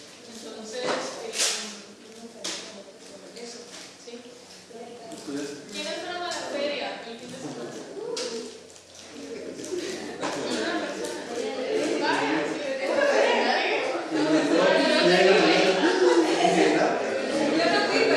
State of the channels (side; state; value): both; identical; correlation 1.00